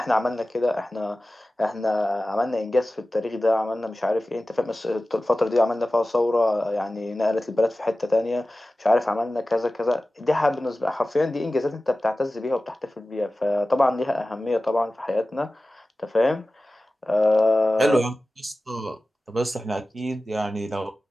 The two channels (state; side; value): normal; both; correlation 0.96